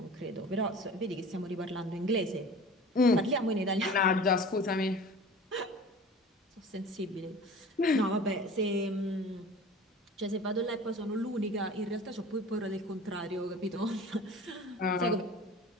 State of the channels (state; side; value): normal; both; correlation 0.40